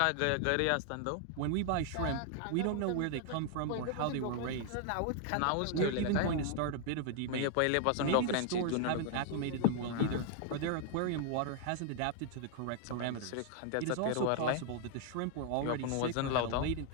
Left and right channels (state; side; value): different; both; correlation 0.00